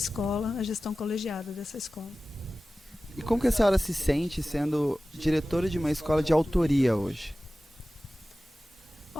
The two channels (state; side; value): normal; both; correlation 0.96